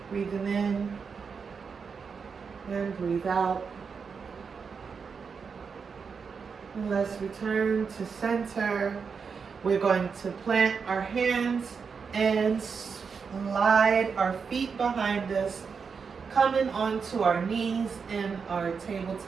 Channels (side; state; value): left; quieter; 5.7 dB